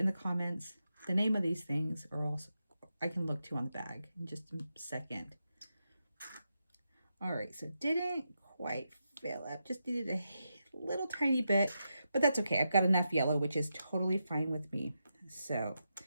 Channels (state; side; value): inverted; both; correlation -0.86